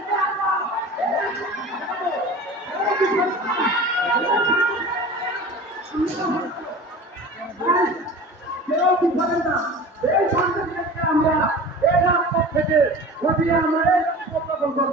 আমরা এই রাজপথ থেকে ঘটিয়ে আমরা এই উত্থাপন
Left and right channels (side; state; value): both; normal; correlation 0.37